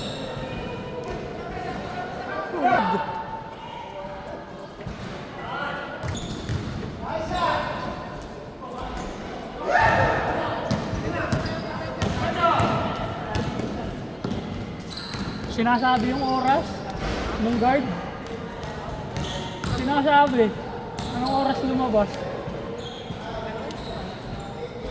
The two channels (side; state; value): both; identical; correlation 1.00